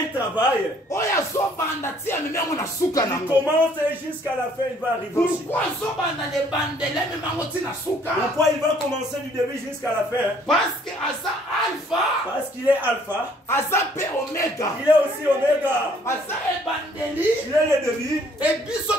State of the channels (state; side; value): normal; both; correlation 0.61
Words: travail. Il commence jusqu'à la fin, il va arriver aussi. Pourquoi il va commencer du début jusqu'à la fin? Parce qu'il est alpha. Il est aussi oméga. Il est le début. Et